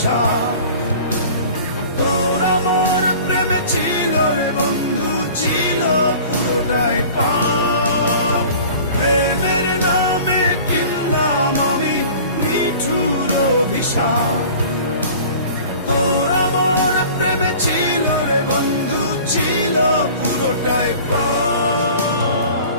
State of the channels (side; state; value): both; inverted; correlation -0.44